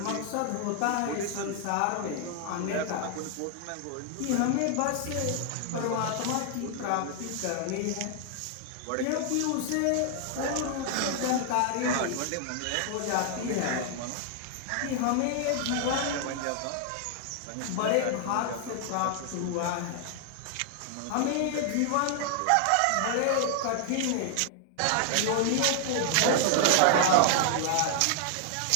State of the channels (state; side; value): different; both; correlation 0.00